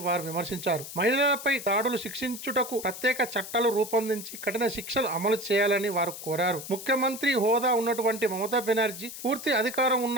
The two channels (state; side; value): noise; left; hiss, 11 dB below the sound